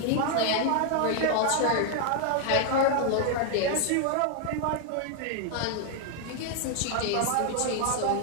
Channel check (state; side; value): different; both; correlation 0.00